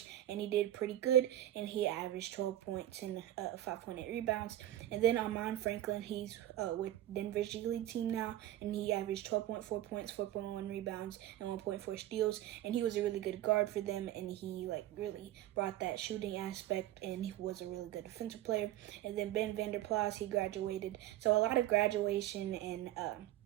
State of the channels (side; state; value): left; quieter; 13.5 dB